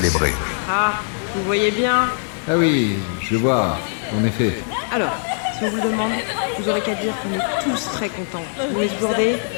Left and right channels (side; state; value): right; silent; digital silence